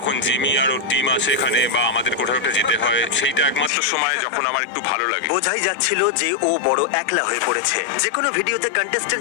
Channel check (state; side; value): drops out; right; at 3.7 s